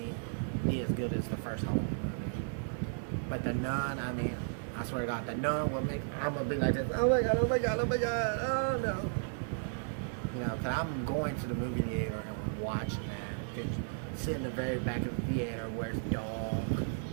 be as good as the first Halloween movie. But the Nun, I swear to God, the Nun will make. I'm gonna be like this. Oh my God! Oh my God! Oh my God! Oh no! Because I'm going to the movie theater and watching that. Because sit in the very back of the theater where it's dark,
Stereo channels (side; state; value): left; silent; digital silence